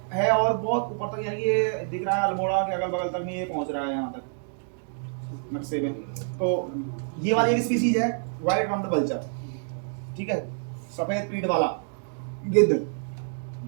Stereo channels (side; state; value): left; silent; digital silence